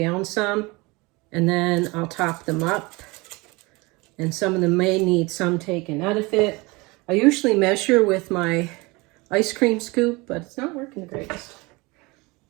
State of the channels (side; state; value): left; quieter; 24.6 dB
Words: some, and then I'll top them up. And some of them may need some taken out of it. I usually measure with my ice cream scoop, but it's not working the greatest.